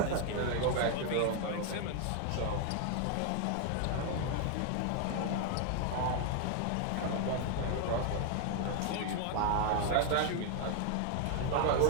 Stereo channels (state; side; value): different; both; correlation 0.00